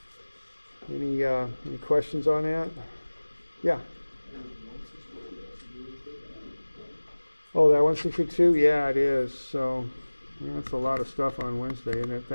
any questions on that? Yeah. Oh, that 162? Yeah, it is. So yeah, that's a lot of stuff on Wednesday, isn't it?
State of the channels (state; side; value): inverted; both; correlation -1.00